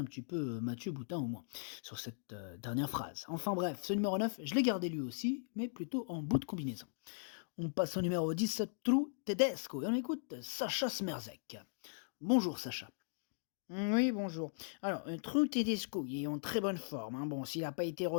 petit peu, Mathieu Boutin au moins, sur cette dernière phrase. Enfin bref, ce numéro 9, je l'ai gardé lui aussi, mais plutôt en bout de combinaison. On passe au numéro 10, True Tedesco, et on écoute Sacha Smerzek. Bonjour Sacha. Oui, bonjour. Alors, True Tedesco, il est en très bonne forme, hein. Bon, s'il n'a pas été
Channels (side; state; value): right; silent; digital silence